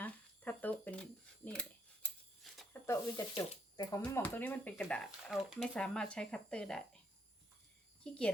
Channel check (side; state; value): both; normal; correlation 0.71